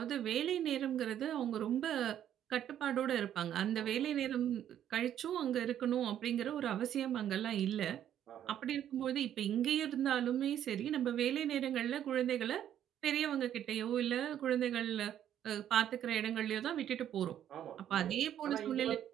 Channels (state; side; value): quieter; left; 10.5 dB